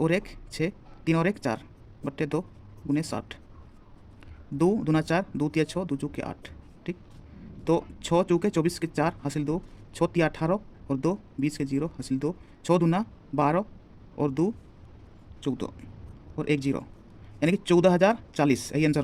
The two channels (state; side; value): identical; both; correlation 1.00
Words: 1 6 3 और 1 4 बट्टे 2 गुने 60। 2 दूना 4 2 तिया 6 2 चौके 8। ठीक, तो 6 चौके 24 के 4 हासिल 2 6 तिया 18 और 2 20 के 0 हासिल 2 6 दूना 12 और 2 14 और 1 0, यानी कि 14040 यही आंसर